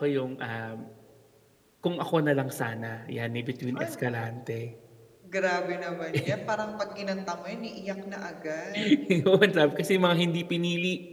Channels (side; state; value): both; identical; correlation 1.00